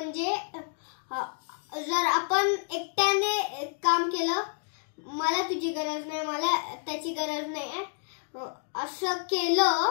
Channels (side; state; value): right; silent; 58 dB below the other